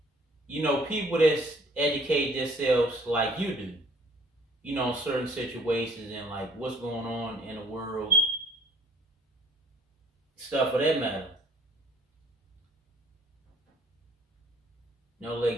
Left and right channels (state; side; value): normal; both; correlation 0.58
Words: People that's educate themselves like you do. Certain situations and like what's going on in the world, stuff of that matter.